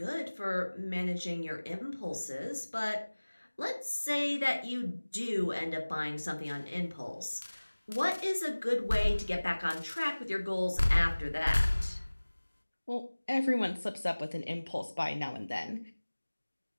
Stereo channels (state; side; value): inverted; both; correlation -1.00